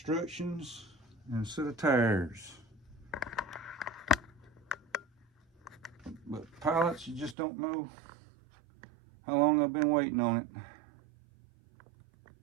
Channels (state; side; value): drops out; left; at 7.4 s